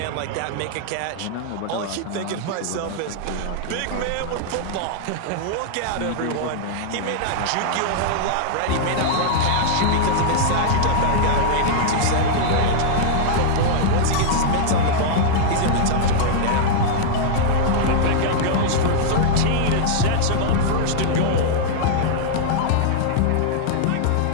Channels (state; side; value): different; both; correlation -0.01